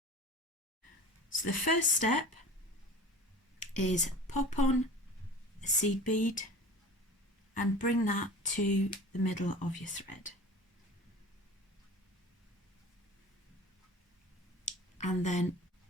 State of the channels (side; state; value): both; normal; correlation 0.39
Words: So the first step is pop on a seed bead and bring that to the middle of your thread. And then